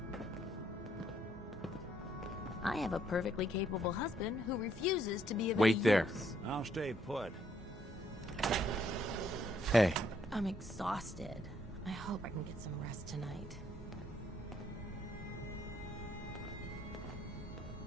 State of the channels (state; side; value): normal; both; correlation 0.70